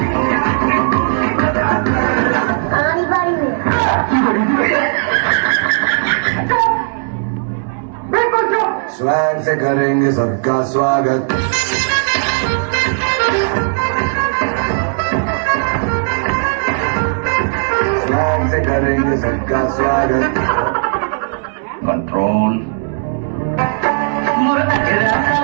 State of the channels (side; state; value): left; silent; 67 dB below the other